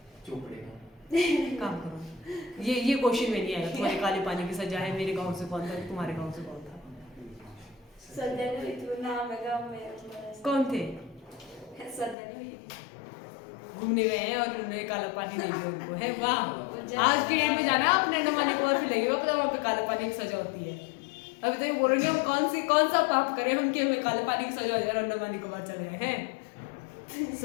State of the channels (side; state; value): right; drops out; at 12.2 s